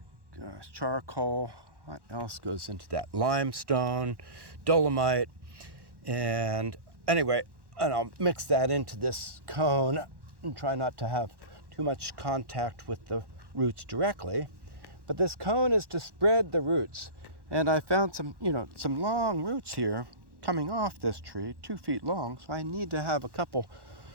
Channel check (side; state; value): left; late; 1.1 ms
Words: charcoal. What else goes into that? Limestone, dolomite, and anyway, and I'll mix that into this cone and try not to have too much contact with the roots directly. But this cone is to spread the roots, and I found some long roots here coming off this tree, 2 feet long, so I need to have a couple